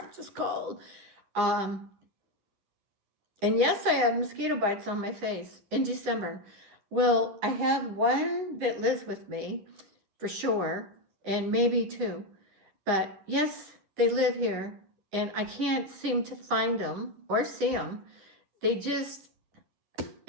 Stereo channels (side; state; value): left; late; 10 ms